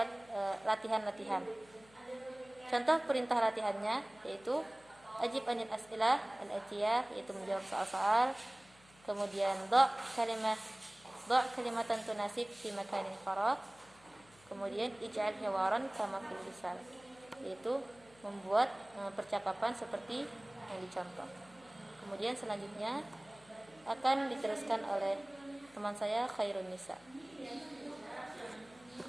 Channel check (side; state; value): left; noise; hum, 27 dB below the sound